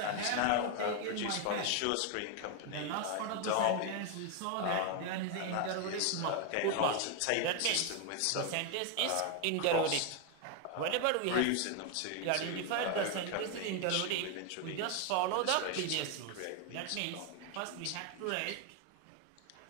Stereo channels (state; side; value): different; both; correlation 0.01